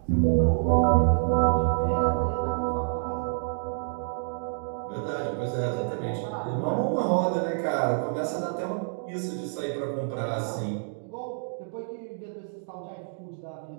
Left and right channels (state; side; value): silent; left; digital silence